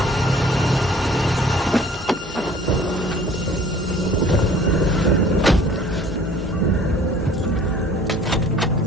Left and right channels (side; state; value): both; normal; correlation 0.51